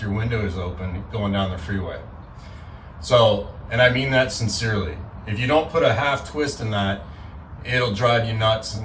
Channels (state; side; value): identical; both; correlation 1.00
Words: your windows open going down the freeway. So, and I mean that sincerely. If you don't put a half twist in that, it'll drive you nuts